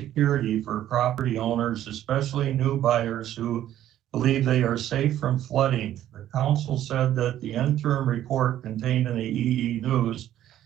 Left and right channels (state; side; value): quieter; left; 12.2 dB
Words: for property owners, especially new buyers who believe they are safe from flooding. The council said that the interim report contained in the EE News